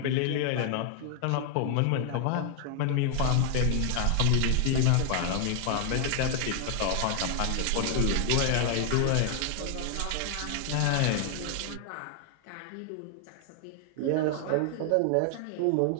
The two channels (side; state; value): both; different; correlation 0.00